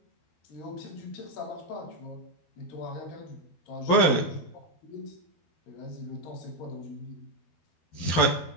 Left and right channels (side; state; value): right; late; 12 ms